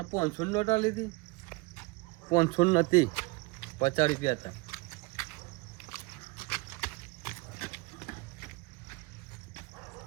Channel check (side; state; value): left; quieter; 24.5 dB